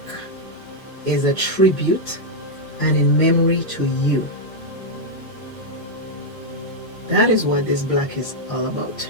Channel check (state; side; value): normal; both; correlation -0.02